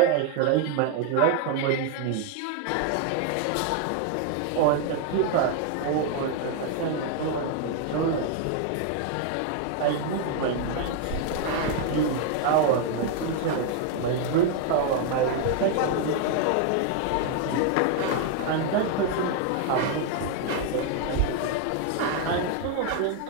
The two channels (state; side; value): different; both; correlation 0.01